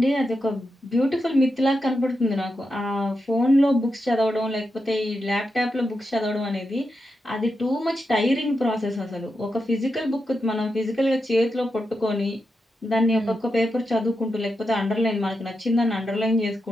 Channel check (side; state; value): both; normal; correlation 0.87